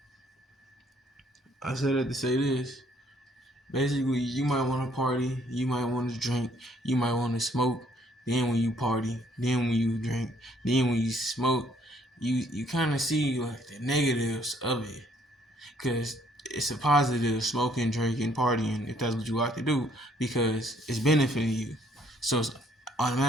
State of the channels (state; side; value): normal; both; correlation 0.65